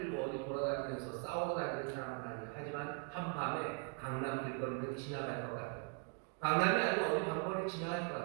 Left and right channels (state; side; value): quieter; left; 36.6 dB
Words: 어디 돌아다니면서 싸우고 다니는 사람은 아니에요. 하지만 한밤에 강남 길거리는 지나갈 것 같아요. 강남이 아니고 어디 방법을 지나갈 것